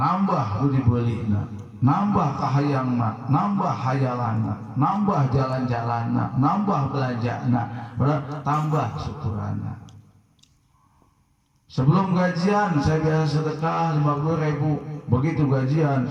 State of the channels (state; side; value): identical; both; correlation 1.00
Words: lu dibelinya, nambah kahayangna, nambah hayalana, nambah jalan-jalanna, nambah belanjana, tambah syukuranna. Sebelum gajian saya biasa sedekah 50.000, begitu gajian